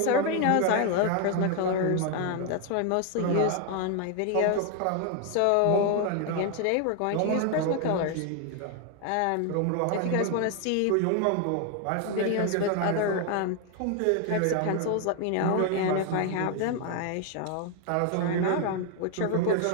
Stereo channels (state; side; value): different; both; correlation 0.01